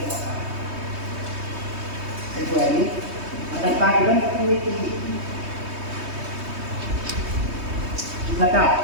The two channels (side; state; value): left; late; 3.2 ms